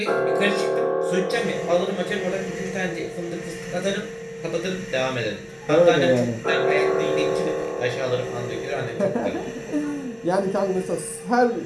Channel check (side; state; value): both; identical; correlation 1.00